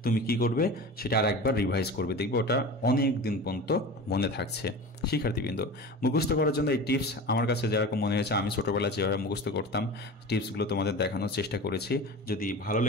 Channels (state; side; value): normal; both; correlation 0.33